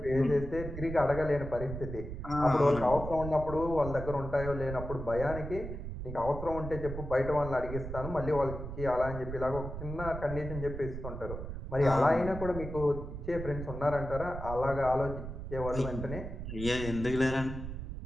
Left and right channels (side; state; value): right; noise; rumble, 8 dB below the sound